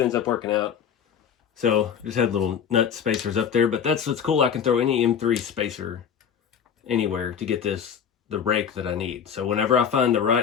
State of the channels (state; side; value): quieter; right; 7.8 dB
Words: ends up working out. So just had little nut spacers up there, but that's what's cool. I can throw any M3 spacer anywhere to get the rake that I need. So whenever I find the